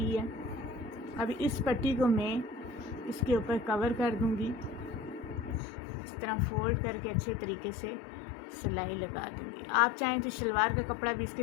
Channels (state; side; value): drops out; right; at 5.6 s